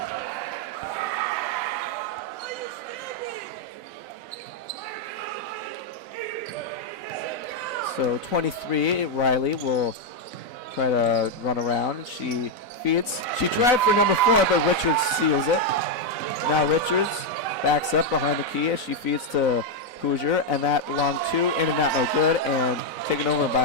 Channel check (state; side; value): late; right; 4.0 ms